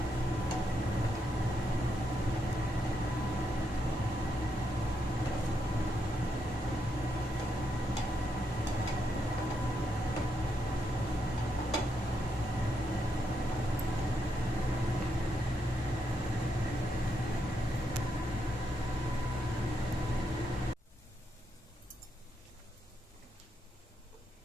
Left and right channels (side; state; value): both; normal; correlation 0.80